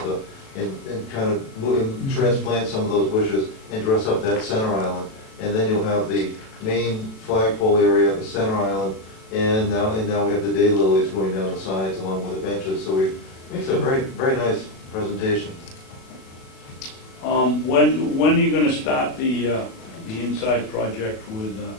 and kind of transplant some of those bushes and dress up that center island. And then you'll have the main flagpole area, the center island, and now we have the daylilies going down the sides along with the benches. So it makes a very, very nice presentation. When are you gonna start the inside project with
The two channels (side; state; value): right; late; 37 ms